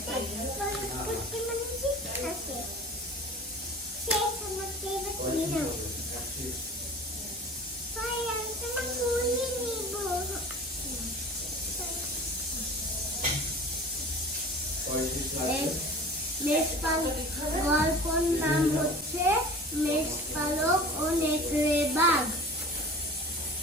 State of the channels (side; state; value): both; normal; correlation 0.40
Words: পুটকি মাঝি আছে সেই সমস্ত গল্পের নাম হচ্ছে মেষপালক ও নেকড়ে বাঘ।